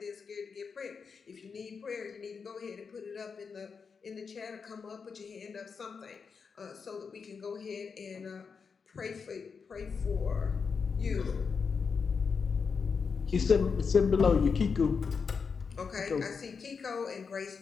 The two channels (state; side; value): quieter; right; 5.6 dB